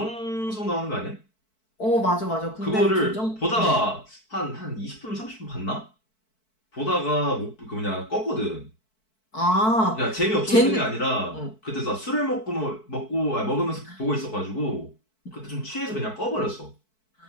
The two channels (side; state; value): right; late; 4.6 ms